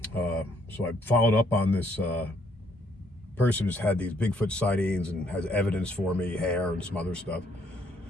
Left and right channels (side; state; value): both; normal; correlation 0.68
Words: So I followed up on this person who's had these Bigfoot sightings and has evidence for me, hair and some other stuff.